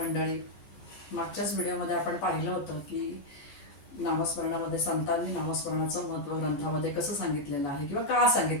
मागच्याच व्हिडिओमध्ये आपण पाहिलं होतं की नामस्मरणामध्ये संतांनी नामस्मरणाचं महत्त्व ग्रंथामध्ये कसं सांगितलेलं आहे किंवा का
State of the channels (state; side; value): late; right; 15 ms